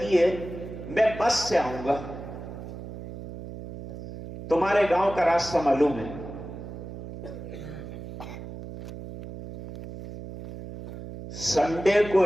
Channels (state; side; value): noise; right; hum, 11 dB below the sound